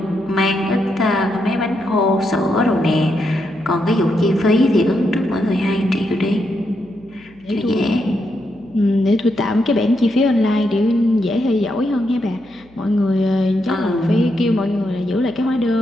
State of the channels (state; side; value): noise; left; hum, 29 dB below the sound